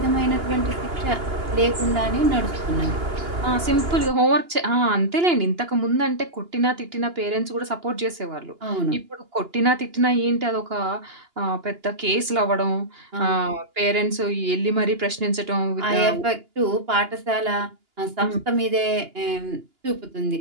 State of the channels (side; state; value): left; late; 2.9 ms